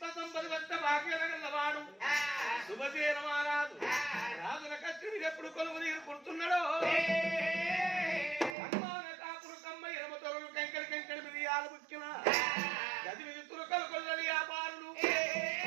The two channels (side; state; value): left; drops out; at 8.6 s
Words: సంపది వద్ద భాగ్యలగల్లవాడు శుభసేన మహారాజు రాజుల కచ్చుని ఎప్పుడు కొలువు నీరు కుడుతున్నాడో అమ్మాన కాపులు కమ్మ ఎనమ తొరలు కంకడి కంకడి మిరియాలు ముక్కిన గది మీద తురకలు కొల్లని వ్యాపారులు